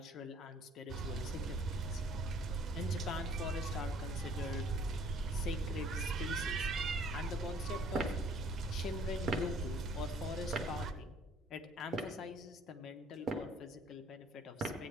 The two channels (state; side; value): normal; both; correlation 0.57